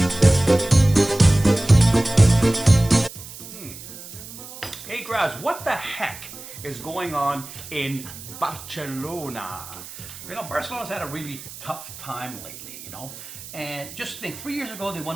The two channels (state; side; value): noise; right; hiss, 14 dB below the sound